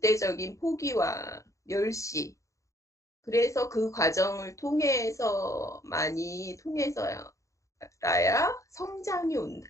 포기와 멸시 그래서 그 과정을 통해서 많이 통해서야 성장이 온다,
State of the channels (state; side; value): late; right; 0.15 ms